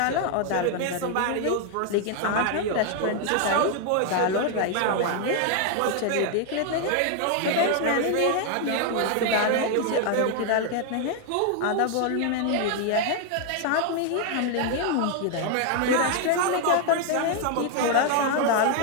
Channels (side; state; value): both; different; correlation 0.00